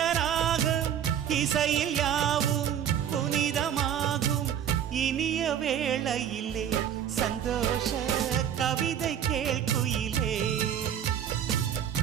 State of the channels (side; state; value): left; quieter; 9.5 dB